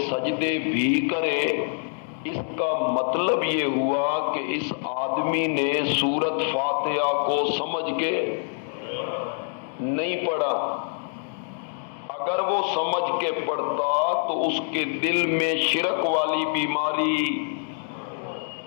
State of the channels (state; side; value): silent; right; 61 dB below the other